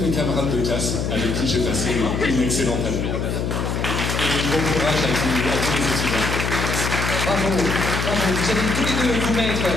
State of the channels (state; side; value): noise; left; hum, 1 dB below the sound